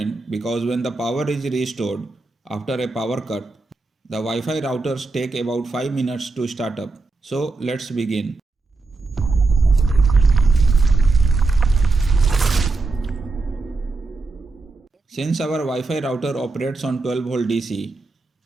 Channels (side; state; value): left; quieter; 3.6 dB